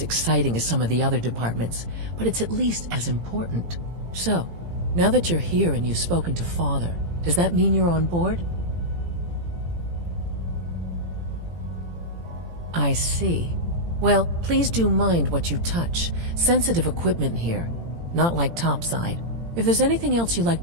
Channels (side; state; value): left; late; 17 ms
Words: exciting as some of the other departments, but it's at least as important. So, now that you're here and you've spoken to Father, does that mean you're on board? I see. Well, please do mind what you touch. Sensitive equipment here, not like topside. If there's anything else you'd like